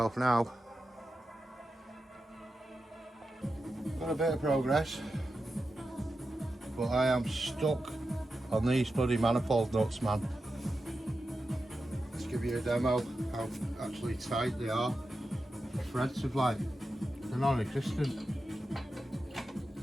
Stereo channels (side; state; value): both; normal; correlation 0.90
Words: now. Got a bit of progress, but I am stuck on these bloody manifold nuts, man. Let's give you a demo how actually tight they are. The threads are like, they're non-existent.